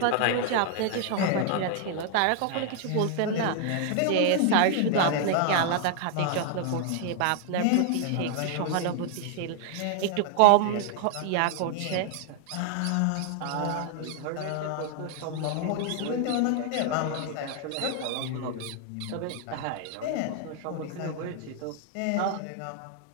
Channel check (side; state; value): both; different; correlation 0.00